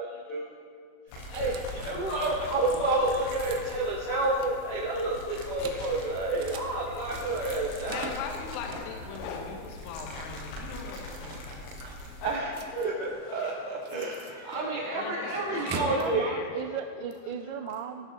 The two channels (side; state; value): right; late; 38 ms